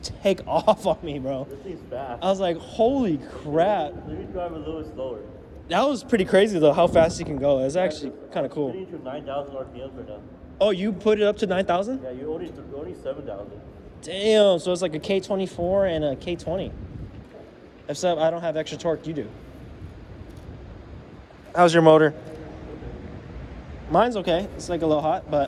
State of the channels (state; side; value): identical; both; correlation 1.00